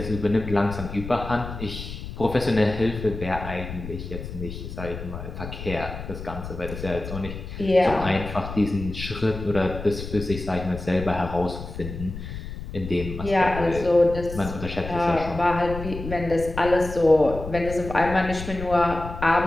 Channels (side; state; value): left; noise; rumble, 9 dB below the sound